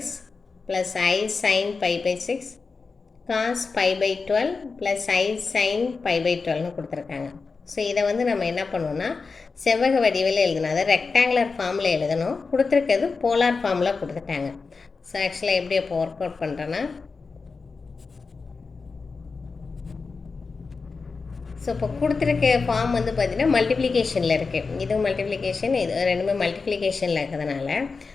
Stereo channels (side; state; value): right; quieter; 4.5 dB